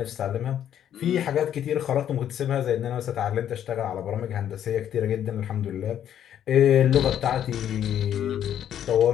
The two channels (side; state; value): right; quieter; 10.2 dB